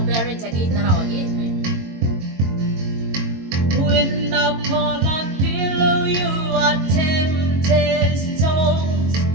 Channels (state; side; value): late; left; 22 ms